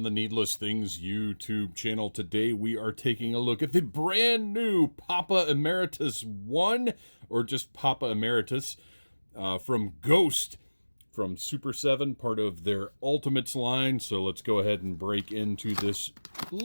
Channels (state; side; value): inverted; both; correlation -1.00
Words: the Needless Things YouTube channel. Today we are taking a look at the brand new Papa Emeritus I, or just Papa Emeritus, from Ghost, from Super 7, part of their Ultimates line. So let's go ahead and break into this